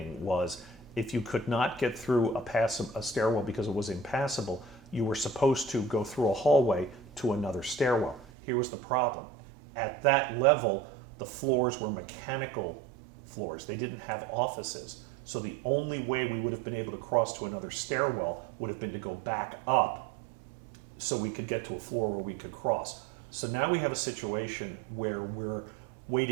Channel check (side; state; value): left; drops out; at 8.2 s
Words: was if you could not get through a stairwell because it was impassable, you were supposed to go through a hallway to another stairwell. Here was the problem. At that level, the floors were mechanical floors. They didn't have offices. So the only way we would have been able to cross to another stairwell would have been to go back up so we could get to a floor where we could cross. So now we have a situation where we're